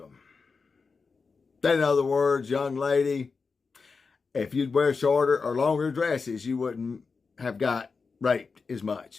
In other words, young lady, if you'd wear shorter or longer dresses, you wouldn't have got raped as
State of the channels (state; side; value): quieter; right; 4.7 dB